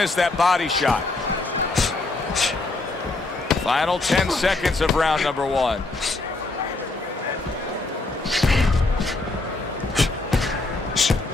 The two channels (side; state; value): right; quieter; 3.3 dB